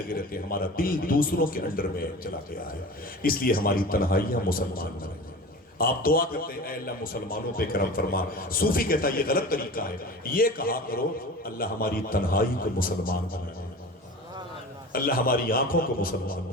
رہتے ہیں، ہمارا دل دوسروں کے انڈر میں چلا گیا ہے، اس لیے ہماری تنہائیاں مسلمان میں رہیں۔ آپ دعا کرتے ہیں اے اللہ مسلمانوں پہ کرم فرما، صوفی کہتا ہے یہ غلط طریقہ ہے، یہ کہا کرو اللہ ہماری تنہائی کو مسلمان بنا دے، اللہ ہماری آنکھوں کو مسلمان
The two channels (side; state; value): both; normal; correlation 0.35